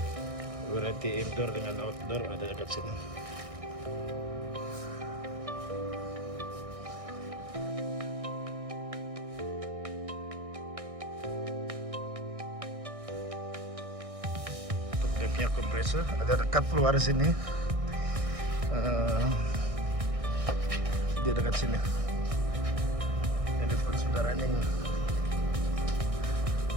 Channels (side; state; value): left; late; 1.6 ms